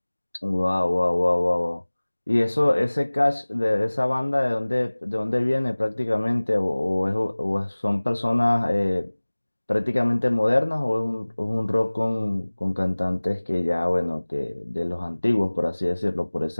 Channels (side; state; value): both; inverted; correlation -1.00